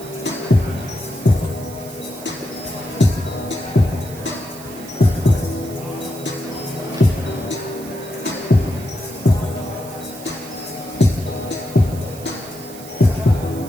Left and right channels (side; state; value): right; noise; hiss, 16 dB below the sound